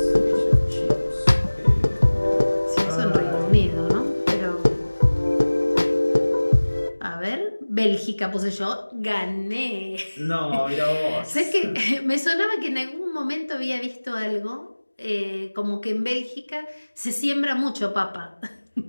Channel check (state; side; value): inverted; both; correlation -1.00